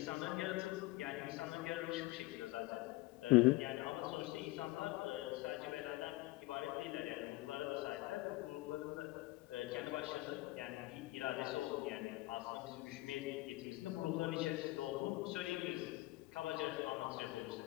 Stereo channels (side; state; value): right; quieter; 20.2 dB